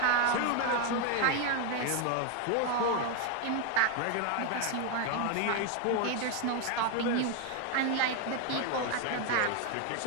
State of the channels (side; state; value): both; different; correlation 0.00